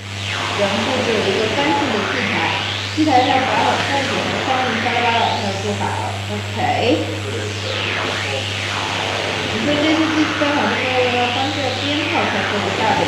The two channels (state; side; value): identical; both; correlation 1.00